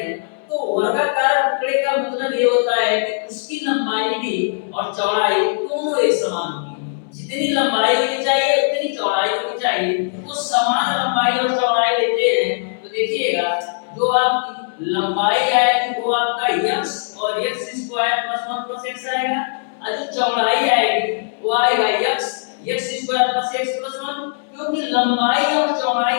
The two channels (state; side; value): silent; right; digital silence